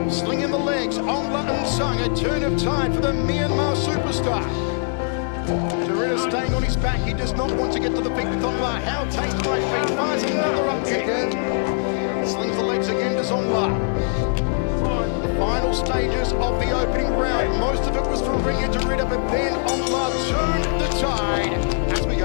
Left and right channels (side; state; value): right; silent; digital silence